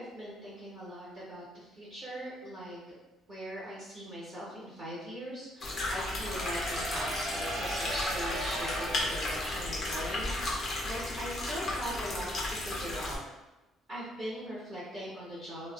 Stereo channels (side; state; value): both; normal; correlation 0.70